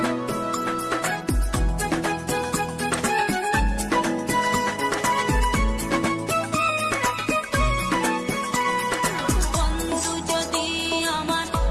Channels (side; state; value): both; identical; correlation 1.00